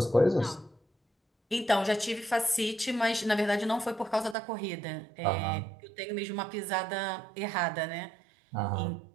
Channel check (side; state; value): left; drops out; at 4.4 s